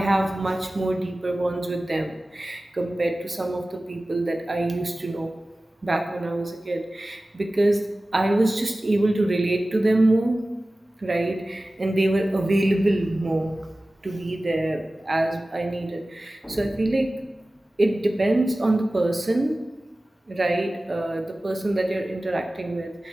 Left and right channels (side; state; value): both; normal; correlation 0.97